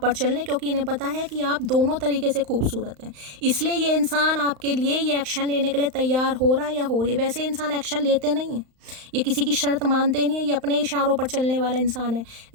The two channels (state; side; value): late; left; 35 ms